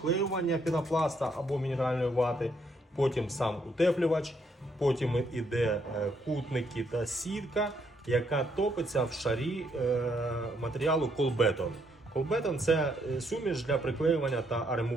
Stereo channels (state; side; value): normal; both; correlation 0.73